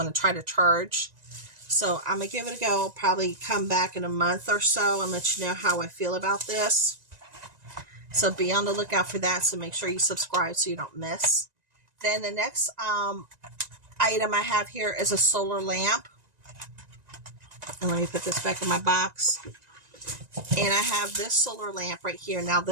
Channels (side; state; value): left; late; 1.9 ms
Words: to try to charge. So I'm going to give it a go. I'll probably come back in a month or so and let you know how I feel about this. So be on the lookout for that. So make sure you subscribe so you don't miss. Then the next item I have here is a solar lamp. And let me put this back in my box. And I have this solar lamp right here. Now